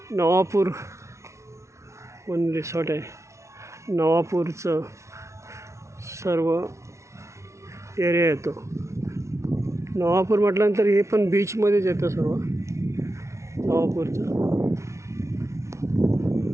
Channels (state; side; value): late; left; 0.14 ms